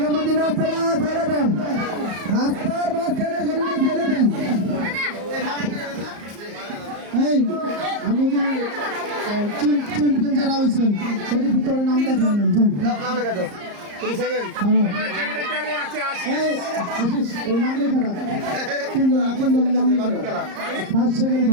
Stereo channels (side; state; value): left; late; 34 ms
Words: রাস্তাটা ছেড়ে দেন। রাস্তার মাঝখানে গরুটা ছেড়ে দেন। এই আমাদের চ্যাম্পিয়ন যারা হয়েছেন সেটি ভিতরে নাম লেখা নেন। নাম লেখা দাও তুমি সেকেন্ড আশিস ওই নাম লেখা না 3 জন নাম লেখা। ফার্স্ট সেকেন্ড